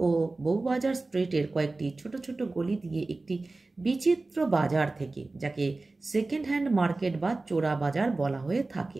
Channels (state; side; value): quieter; left; 3.3 dB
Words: ও বউবাজার স্ট্রিটের কয়েকটি ছোট ছোট গলি দিয়ে একটি বিচিত্র বাজার থেকে, যাকে সেকেন্ড হ্যান্ড মার্কেট বা চোরা বাজার বলা হয়ে থাকে।